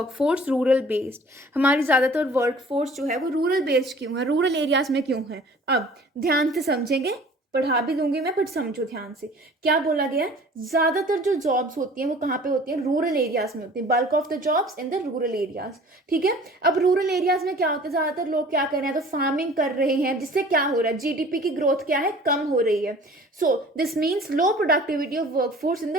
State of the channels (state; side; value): normal; both; correlation 0.48